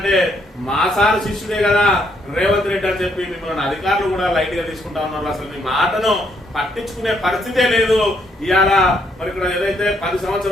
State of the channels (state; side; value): normal; both; correlation 0.72